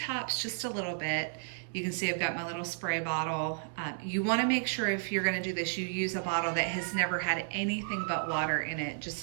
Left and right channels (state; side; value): silent; left; digital silence